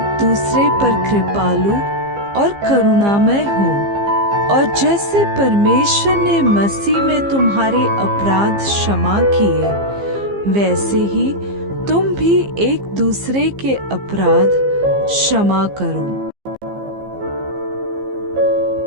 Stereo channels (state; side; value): late; left; 15 ms